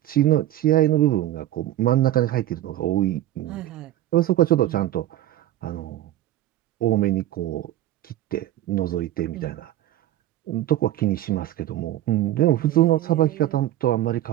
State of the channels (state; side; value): quieter; left; 13.6 dB